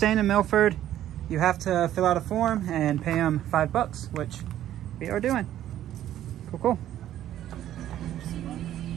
in Milford, you have to fill out a form and pay them $5, which we are doing. Cool, cool.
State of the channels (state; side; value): quieter; left; 12.1 dB